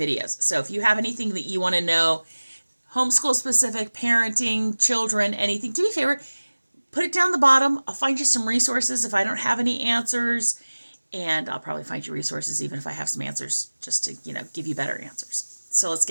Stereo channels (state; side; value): inverted; both; correlation -1.00